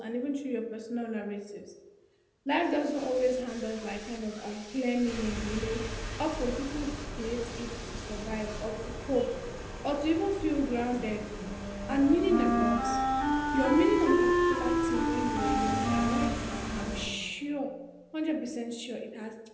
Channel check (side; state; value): both; identical; correlation 1.00